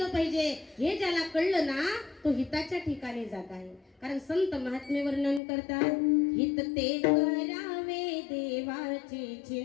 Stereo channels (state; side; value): drops out; right; at 5.4 s